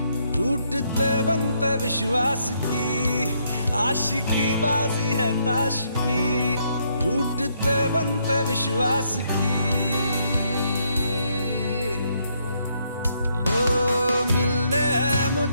टूटते बनते विश्वास की। आशिकी बाजी है ताश की, टूटते बनते विश्वास की। ओ मिलने है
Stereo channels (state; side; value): inverted; both; correlation -0.73